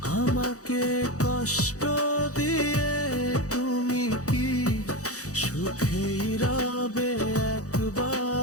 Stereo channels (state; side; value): late; right; 0.66 ms